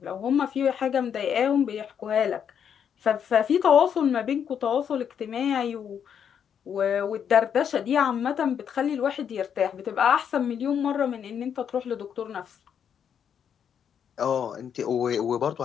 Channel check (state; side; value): quieter; right; 8.1 dB